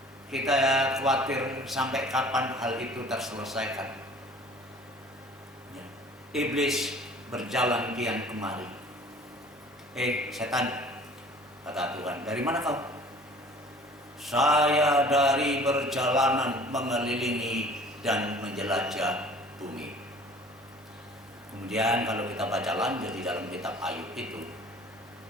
kita khawatir sampai kapan hal itu terselesaikan. Ya. Iblis berjalan kian kemari. Setan, kata Tuhan, dari mana kau? Saya dari perjalanan mengelilingi dan menjelajah bumi. Kemudian kalau kita baca lanjut di dalam kitab Ayub itu,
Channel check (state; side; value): normal; both; correlation 0.48